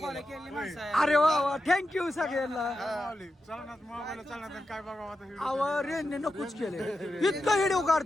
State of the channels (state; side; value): normal; both; correlation 0.89